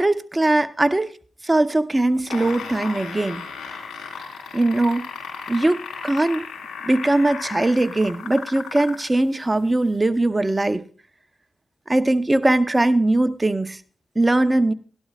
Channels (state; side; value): normal; both; correlation 0.98